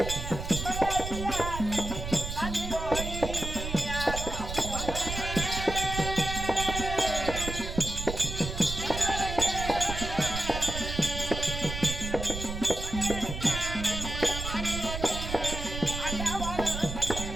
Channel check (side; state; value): right; noise; rumble, 6 dB below the sound